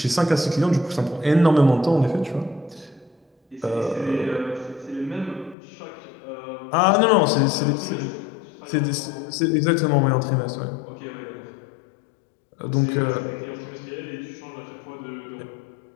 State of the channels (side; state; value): right; drops out; at 5.6 s